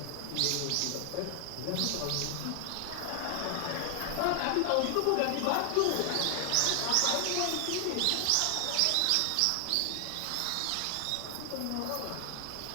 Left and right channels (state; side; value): different; both; correlation 0.00